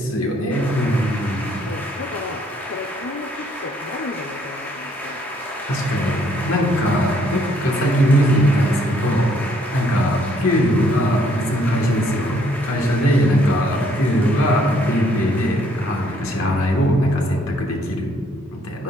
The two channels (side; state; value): both; normal; correlation 0.66